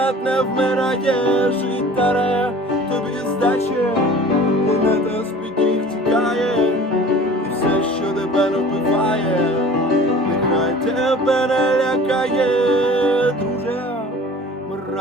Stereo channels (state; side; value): normal; both; correlation 0.44